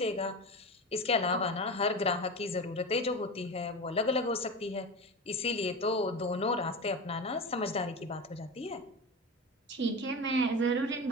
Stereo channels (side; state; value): both; normal; correlation 0.25